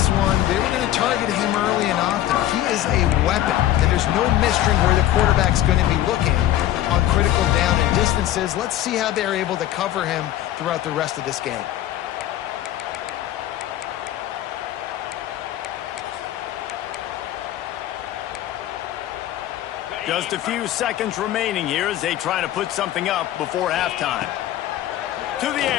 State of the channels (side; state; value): right; quieter; 13.2 dB